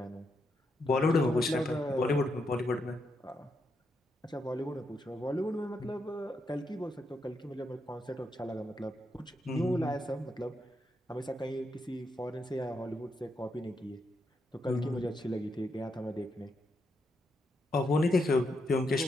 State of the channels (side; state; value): both; normal; correlation 0.81